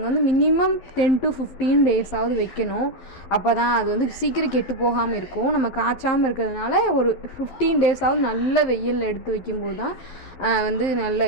வந்து மினிமம் 10 to 15 டேஸாவது வைக்கணும். அப்போ தான் அது வந்து சீக்கிரம் கெட்டு போகாமல் இருக்கும். நம்ம காய்ச்சாமல் இருக்கிறதுனால ஒரு 15 டேஸாவது நல்ல வெயிலில் எடுத்து வைக்கும்போது தான் வந்து நல்ல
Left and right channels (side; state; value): right; late; 12 ms